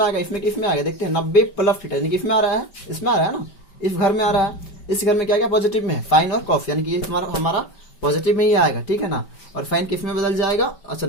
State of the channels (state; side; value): late; right; 5.1 ms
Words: आएगा, इसमें किस में आएगा, देखते हैं। 90 प्लस थीटा यानी कि इसमें आ रहा है, इसमें आ रहा है ना, इस घर में आ रहा है। इस घर में क्या क्या पॉजिटिव में है, साइन और कॉस, यानी कि ये हमारा पॉजिटिव में ही आएगा। ठीक है ना, और साइन किस में बदल जाएगा, अच्छा